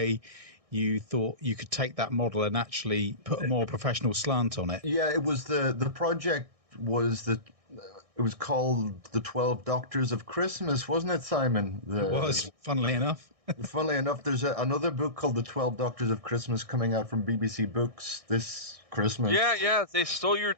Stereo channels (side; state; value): left; late; 1.6 ms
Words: you thought you could take that model and actually put a more professional slant on it. Yeah, it was the project was it was called The 12 Doctors of Christmas, wasn't it, Simon? It was, funnily enough. Funnily enough, there's another book called The 12 Doctors of Christmas coming out from BBC Books this Christmas. Yeah, they stole your